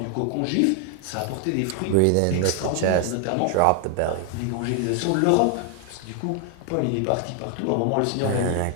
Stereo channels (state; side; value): different; both; correlation 0.00